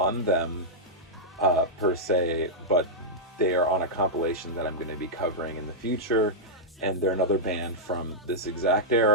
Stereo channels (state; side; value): normal; both; correlation -0.08